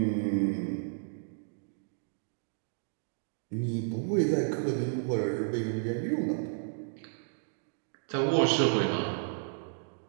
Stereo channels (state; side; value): silent; left; digital silence